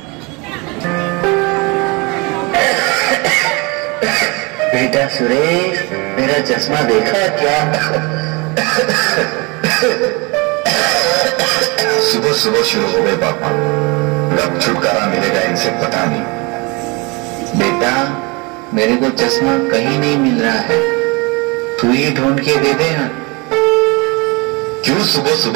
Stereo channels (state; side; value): quieter; left; 27.8 dB